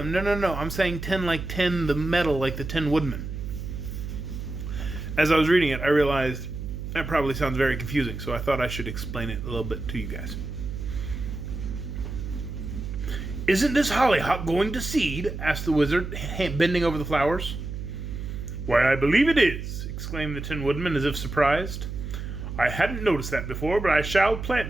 No. I'm saying 10 like 10, the metal, like the Tin Woodman. As I was reading it, I realized that probably sounds very confusing, so I thought I should explain it a little bit to you guys. "Isn't this hollyhock going to seed?" asked the wizard, bending over the flowers. "Why, I believe it is," exclaimed the Tin Woodman, as if surprised. "I hadn't noticed that before, but I shall plant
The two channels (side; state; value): right; noise; hum, 7 dB below the sound